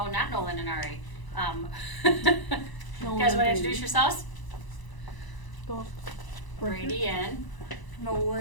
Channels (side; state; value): right; late; 1.0 ms